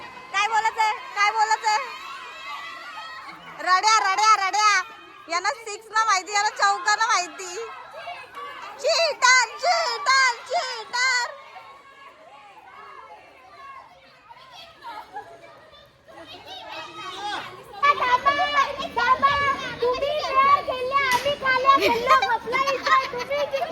काय बोलायचंय. रड्या यांना 6 ना माहिती, यांना चौका ना माहिती. चीटर.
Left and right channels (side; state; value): both; identical; correlation 1.00